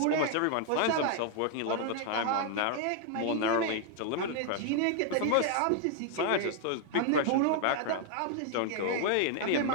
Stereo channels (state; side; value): different; both; correlation 0.00